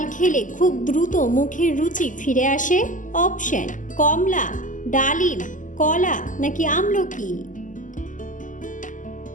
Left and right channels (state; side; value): late; right; 0.37 ms